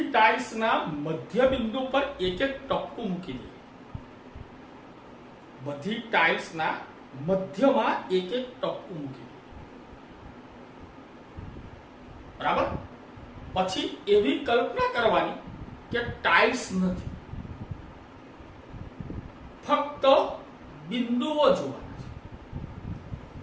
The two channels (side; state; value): both; identical; correlation 1.00